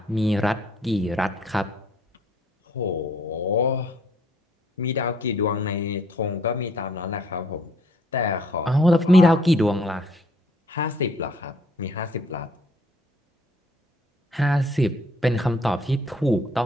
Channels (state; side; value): normal; both; correlation 0.63